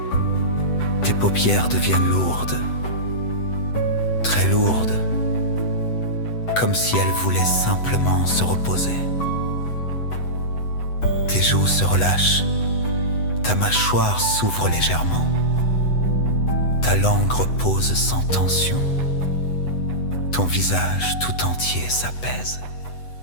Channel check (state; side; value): late; right; 8.0 ms